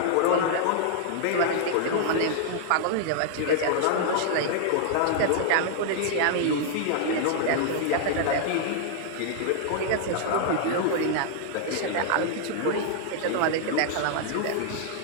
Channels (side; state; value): both; different; correlation -0.01